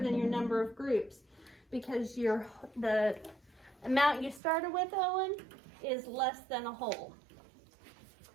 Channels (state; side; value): drops out; left; at 4.4 s